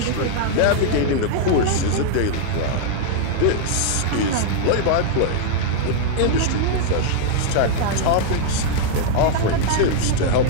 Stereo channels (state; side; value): different; both; correlation -0.01